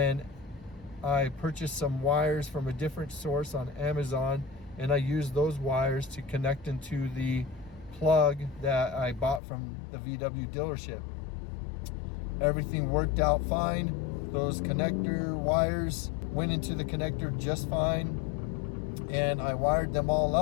I purchased some wires from a different source on Amazon, and I used those wires to connect into the plug that I bought from the VW dealership. Everything worked out fine. Those connector wires went into the connector just fine, and I wired them all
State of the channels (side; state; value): right; drops out; at 9.4 s